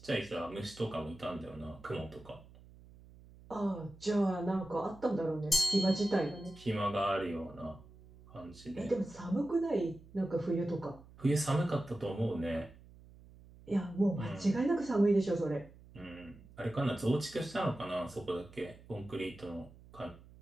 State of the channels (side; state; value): right; noise; hum, 21 dB below the sound